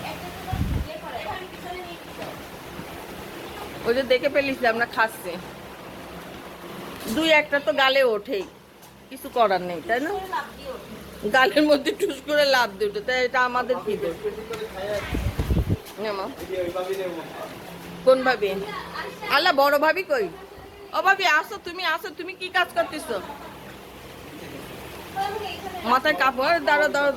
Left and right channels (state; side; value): identical; both; correlation 1.00